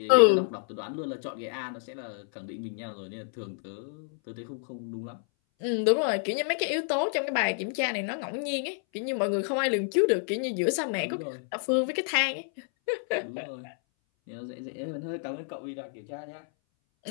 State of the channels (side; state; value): right; silent; 58 dB below the other